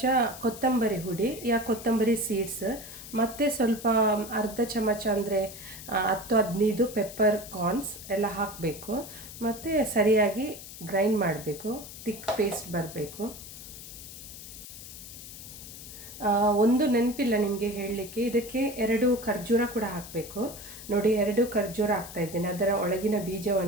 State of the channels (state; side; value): noise; left; hiss, 13 dB below the sound